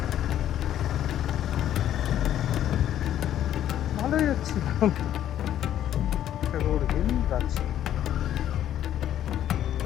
ভালোই যাচ্ছি। ট্যাগোর হিল যাচ্ছি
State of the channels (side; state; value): right; quieter; 11.3 dB